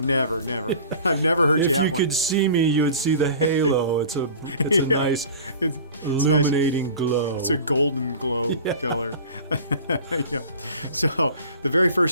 I've never heard you have one. If you could see me, you would see the halo. It's a nice, illuminating glow. It's a golden glow color. Yeah. So the very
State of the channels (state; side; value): inverted; both; correlation -0.41